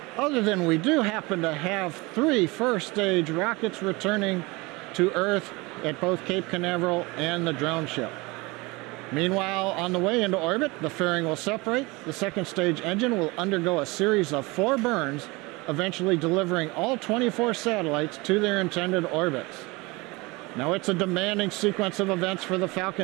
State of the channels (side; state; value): left; quieter; 24.3 dB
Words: other than we do happen to have 3 first stage rockets returning to Earth at both Cape Canaveral and the drone ship. Meanwhile, on the way into orbit, the fairing will separate. The second stage engine will undergo a series of 4 burns, eventually delivering all 24 satellites to their intended orbits. Now it's a demanding sequence of events for the